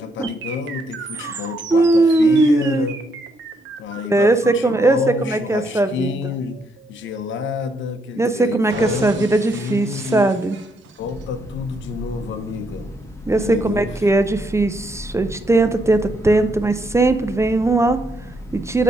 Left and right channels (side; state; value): both; normal; correlation 0.75